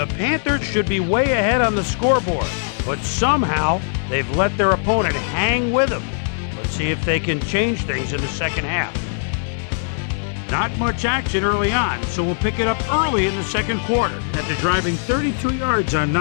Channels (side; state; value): right; silent; digital silence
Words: Panthers should be way ahead on the scoreboard, but somehow they've let their opponent hang with them. Let's see if they can change things in the second half. Not much action early on, so we'll pick it up early in the second quarter. After driving 32 yards on